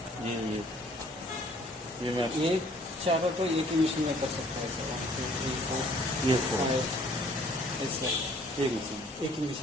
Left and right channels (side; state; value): both; normal; correlation 0.58